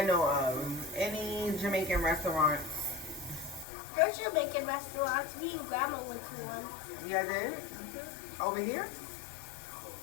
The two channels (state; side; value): drops out; right; at 3.7 s